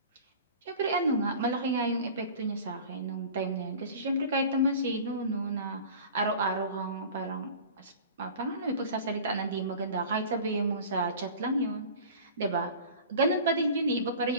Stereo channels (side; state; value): both; inverted; correlation -0.39